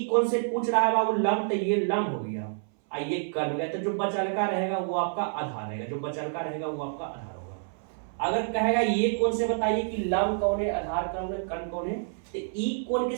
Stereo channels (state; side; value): silent; left; 59 dB below the other